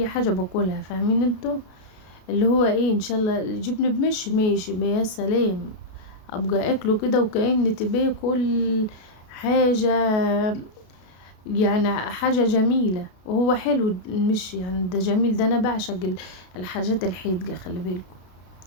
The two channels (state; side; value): late; right; 33 ms